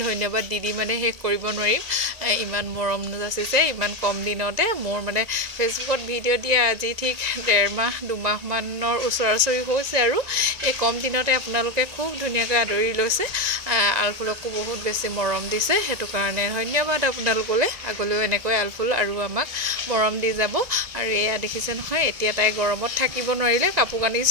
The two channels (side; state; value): left; late; 2.0 ms